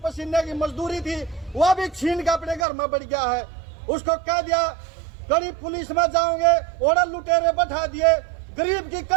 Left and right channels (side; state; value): left; drops out; at 2.7 s